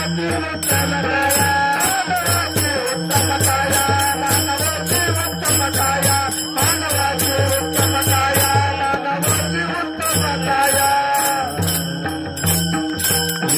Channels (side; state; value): both; identical; correlation 1.00